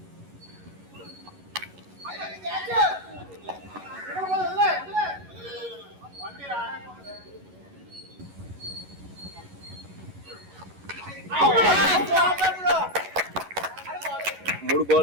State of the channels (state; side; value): late; left; 11 ms